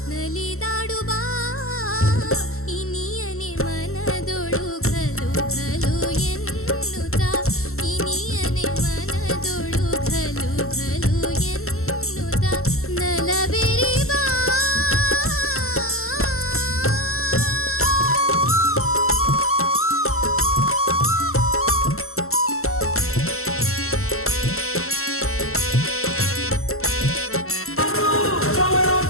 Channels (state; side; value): late; right; 0.63 ms